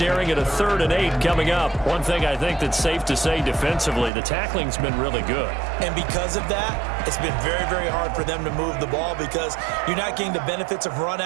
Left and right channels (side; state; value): left; drops out; at 4.1 s